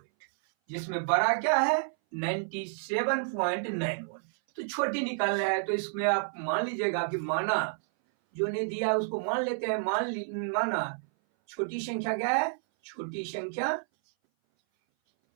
जिसमें बड़ा क्या है 97.91। तो छोटी निकालना है। तो इसमें आप मान लीजिएगा कि माना जो ने दिया है उसको मान लेते हैं। माना छोटी संख्या क्या है, छोटी संख्या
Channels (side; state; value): left; silent; 57 dB below the other